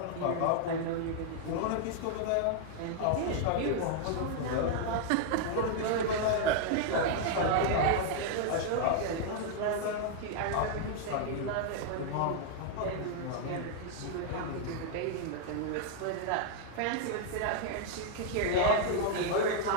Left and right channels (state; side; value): different; both; correlation 0.00